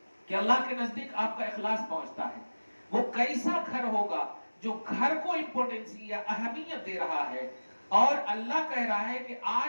کہ اللہ کے نزدیک آپ کا اخلاص پہنچتا ہے. وہ کیسا گھر ہوگا جو گھر کو امپورٹنس یا اہمیت دے رہا ہے, اور اللہ کہہ رہا ہے کہ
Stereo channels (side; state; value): both; inverted; correlation -1.00